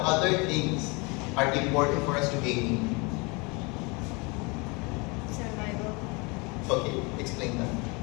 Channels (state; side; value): quieter; right; 28.7 dB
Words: other things are important for us to gain? Survival. Okay, explain that.